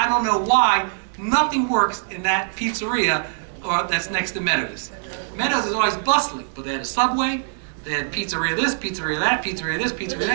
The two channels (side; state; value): left; silent; digital silence